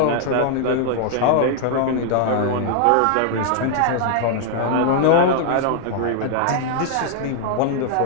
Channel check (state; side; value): different; both; correlation 0.00